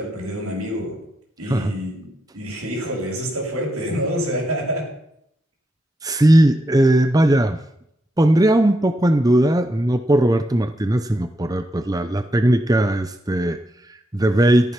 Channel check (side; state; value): both; normal; correlation 0.83